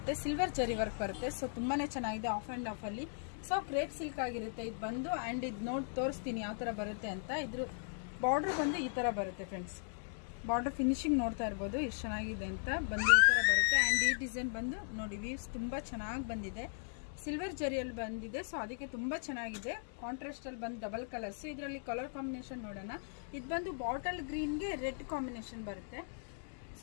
ಸಿಲ್ವರ್ ಜರಿ ವರ್ಕ್ ಬರುತ್ತೆ. ಸೊ ತುಂಬಾನೇ ಚೆನ್ನಾಗಿದೆ ಆಫ್ ಅಂಡ್ ಆಫ್ ಅಲ್ಲಿ. ಸೊ ಕ್ರೇಪ್ ಸಿಲ್ಕ್ ಆಗಿರುತ್ತೆ ಇದು ಬಂದು. ಅಂಡ್ ಇದು ನೋಡಿ ತೋರಿಸ್ತೀನಿ ಯಾವ ತರ ಬರುತ್ತೆ ಅಂತ. ಇದ್ರ ಬಾರ್ಡರ್ ಬಂದು ಈ ತರ ಬರುತ್ತೆ ಫ್ರೆಂಡ್ಸ್. ಬಾರ್ಡರ್ ಫಿನಿಶಿಂಗ್ ನೋಡ್ತಾ ಇರ್ಬೋದು ಎಷ್ಟು ಚೆನ್ನಾಗಿದೆ ಅಂತ. ಬಂದು ಈ ತರ ಬರುತ್ತೆ. ಅಂಡ್ ಈ ಡಿಸೈನ್ ಬಂದು ನೋಡಿ, ವೀವ್ಸ್ ತುಂಬಾ ಚೆನ್ನಾಗಿ ಬಂದಿದೆ, ಸಿಲ್ವರ್ ಜರಿಯಲ್ಲಿ ಬಂದಿದೆ. ಸೊ ಅದಕ್ಕೆ ತುಂಬಾ ಚೆನ್ನಾಗಿದೆ. ಕಾಂಟ್ರಾಸ್ಟ್ ಅಲ್ಲಿ ಬಂದು ಡಬಲ್ ಕಲರ್ಸ್. ಇದರಲ್ಲಿ ಕಲರ್ ಕಾಂಬಿನೇಷನ್ ನೋಡೋಣ. ಇದು ಬಂದು ಬಾಟಲ್ ಗ್ರೀನ್ಗೆ ರೆಡ್ ಕಾಂಬಿನೇಷನ್ ಬರುತ್ತೆ.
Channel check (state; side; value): silent; right; digital silence